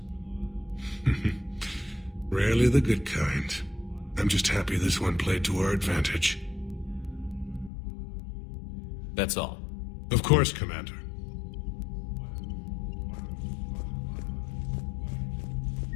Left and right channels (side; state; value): right; drops out; at 7.7 s